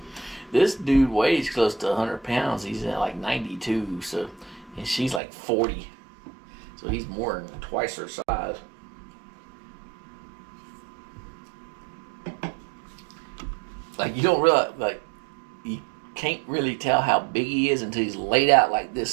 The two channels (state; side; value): drops out; left; at 5.2 s